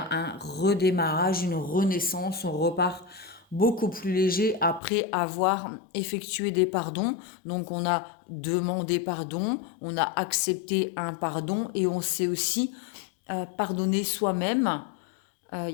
un redémarrage, une renaissance, on repart beaucoup plus léger après avoir effectué des pardons. Donc on a demandé pardon, on a accepté un pardon et on sait aussi pardonner soi-même. Il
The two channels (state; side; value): drops out; right; at 4.8 s